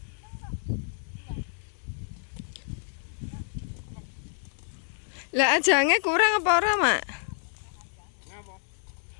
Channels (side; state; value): right; silent; digital silence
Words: Lah ajange kurang apa ora, Mak? Ngapa?